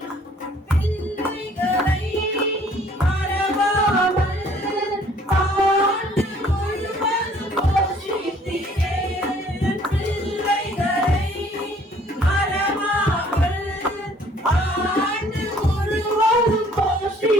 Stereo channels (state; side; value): normal; both; correlation 0.58